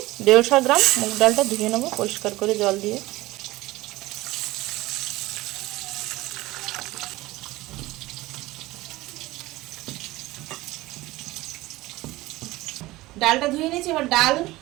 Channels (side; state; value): left; quieter; 18.9 dB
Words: 150 গ্রাম, মুগ ডালটা ধুয়ে নেব পরিষ্কার করে জল দিয়ে। ডালটা ধুয়ে নিয়েছি, এবার ডাল